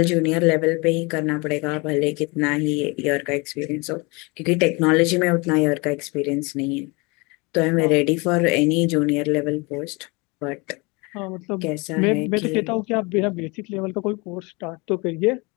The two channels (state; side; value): quieter; right; 27.6 dB